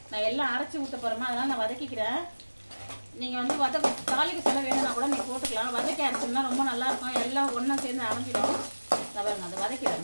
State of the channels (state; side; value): inverted; both; correlation -1.00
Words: நான் எல்லாம் அரைச்சி ஊற்ற போறேமா, அதனால நான் வதக்கிக்கிறேன். நீங்க வந்து தாளிக்கு சொல்ல வேணும்னா கூட நீங்க போட்டுக்கலாம். வதக்கி அரைச்சோம்னா ரொம்ப நல்லா இருக்கும், எல்லாம் ஒன்னா சேர்ந்து அரைஞ்சிடும். பாருங்க, அதை